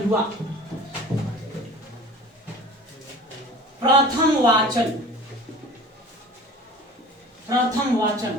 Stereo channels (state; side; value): normal; both; correlation 0.42